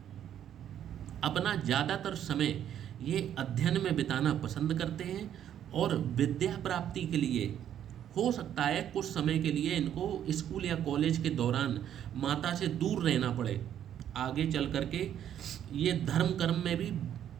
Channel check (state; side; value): quieter; left; 10.2 dB